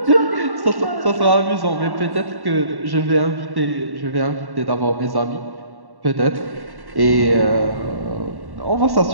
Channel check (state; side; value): late; left; 1.1 ms